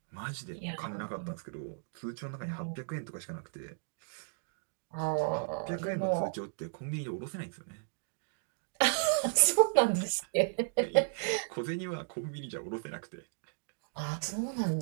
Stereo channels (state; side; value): silent; left; digital silence